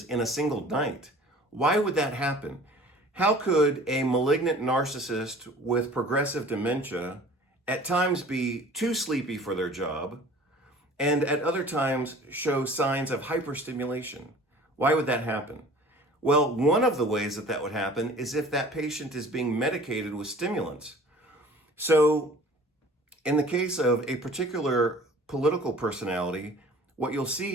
in a single night. Why would that happen? How could a malignant narcissist with progressive dementia at times be too sleepy for their job and at other times show signs of hyperstimulation? Why would that happen? Well, one of the ways that would happen is if that patient is being medicated with stimulants. So in the case of a particular political personality, what you'll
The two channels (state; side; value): normal; both; correlation 0.47